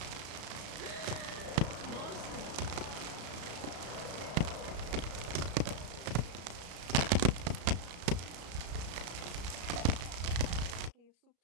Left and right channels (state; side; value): late; left; 34 ms